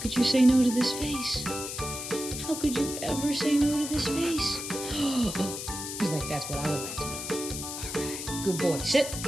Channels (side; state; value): left; noise; hiss, 7 dB below the sound